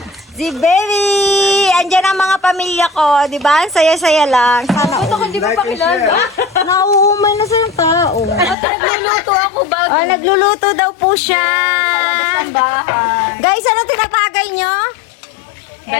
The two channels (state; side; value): drops out; right; at 8.6 s